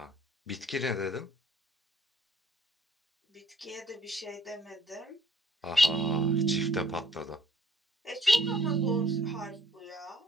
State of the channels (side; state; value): both; normal; correlation 0.61